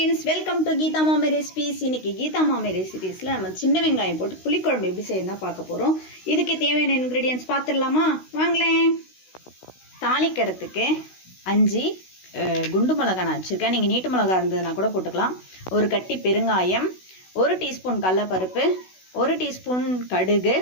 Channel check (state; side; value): late; right; 16 ms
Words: welcome to Gita मामी recipes इनकी गीता मामी रेसिपीஸ்ல நம்ம சின்ன வெங்காயம் போட்டு புளிக்குழம்பு எப்படி செய்யணும்னு பார்க்க போறோம். இதுக்கு தேவையான இன்கிரிடியன்ட்ஸ் பார்த்துடலாமா? வாங்களேன். தாளிக்கிறதுக்கு 5 குண்டு மிளகாய் நான் வச்சிருக்கேன். நீங்க நீட்டு மிளகாய் இருந்ததுனா கூட போட்டுக்கலாம். ஒரு கட்டி பெருங்காயம், 1 டீஸ்பூன் கடலைப்பருப்பு, 1 டீஸ்பூன் கடுகு,